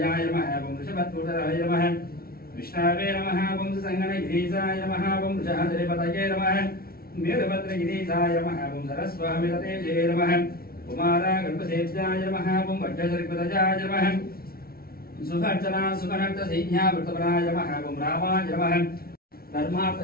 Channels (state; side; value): late; right; 0.44 ms